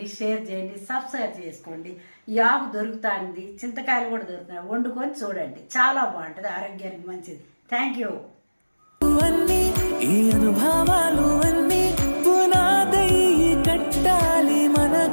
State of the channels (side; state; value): both; inverted; correlation -1.00